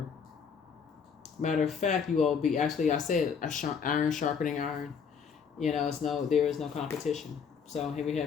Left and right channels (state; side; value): quieter; right; 6.5 dB